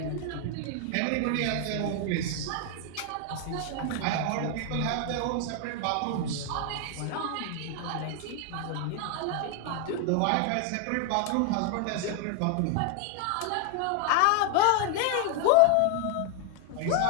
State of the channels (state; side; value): different; both; correlation 0.01